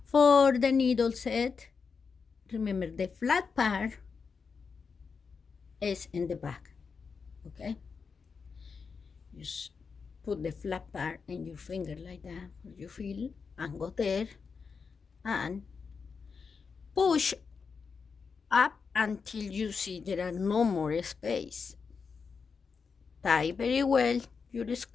for the needle set, remember the flat part is in the back. Okay, just put the flat part in your finger like that, you feel, and go there and push up until you see there are no more space. Tie very well your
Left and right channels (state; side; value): quieter; right; 5.4 dB